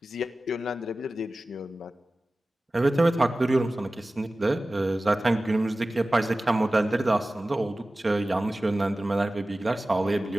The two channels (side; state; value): both; normal; correlation 0.96